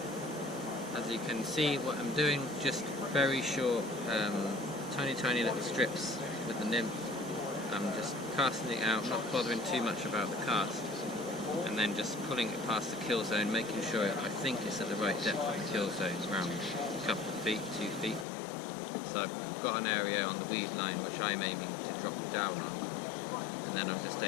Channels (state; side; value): drops out; right; at 18.2 s